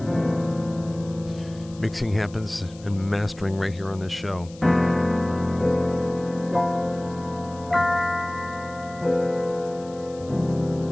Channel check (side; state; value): left; noise; hiss, 23 dB below the sound